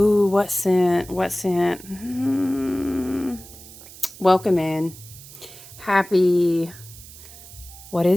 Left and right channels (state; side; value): noise; right; hiss, 18 dB below the sound